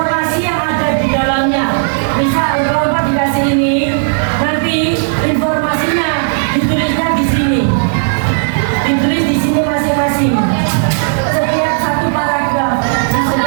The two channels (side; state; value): left; silent; digital silence